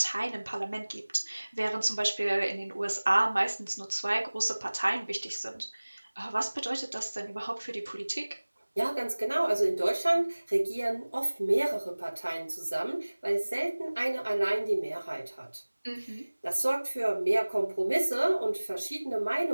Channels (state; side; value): inverted; both; correlation -1.00